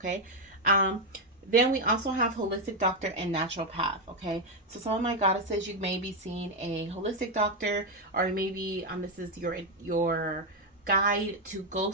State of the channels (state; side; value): normal; both; correlation 0.04